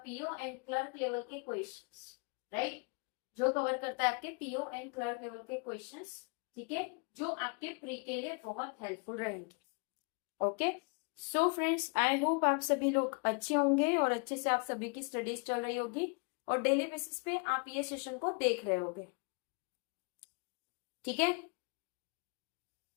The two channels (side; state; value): right; quieter; 34.2 dB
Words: एंड क्लर्क लेवल के क्वेश्चंस, राइट। जो कवर करता है आपके पीओ एंड क्लर्क लेवल के क्वेश्चंस, ठीक है, जो आपके प्री के लिए बहुत हेल्पफुल रहेंगे। Okay, so friends, I hope आप सभी लोग अच्छे होंगे और अच्छे से आप सभी की स्टडीज चल रही होगी और डेली बेसिस पे आप ये सेशन को देख रहे होगे, ठीक है,